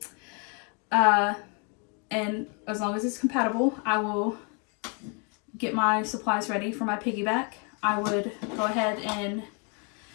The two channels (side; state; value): right; quieter; 36.1 dB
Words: And as long as it's compatible, I will get my supplies ready for my piggyback. I would go ahead and